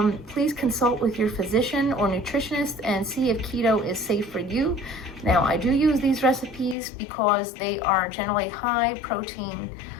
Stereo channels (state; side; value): drops out; right; at 6.8 s